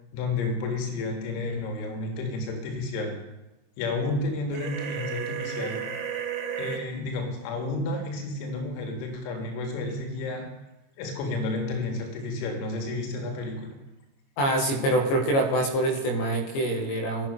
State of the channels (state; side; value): late; right; 22 ms